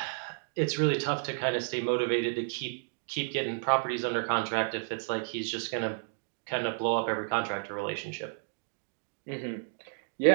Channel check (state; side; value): silent; left; digital silence